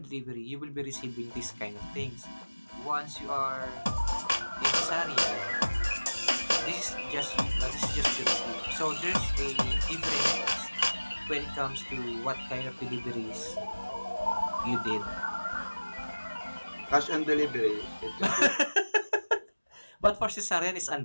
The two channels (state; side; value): inverted; both; correlation -1.00